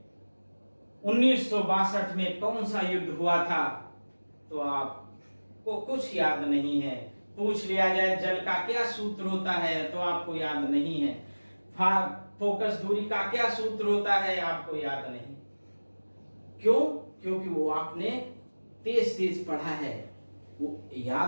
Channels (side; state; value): both; inverted; correlation -1.00